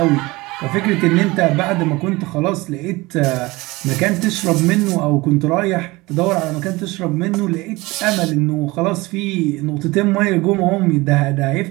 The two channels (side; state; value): left; quieter; 22.0 dB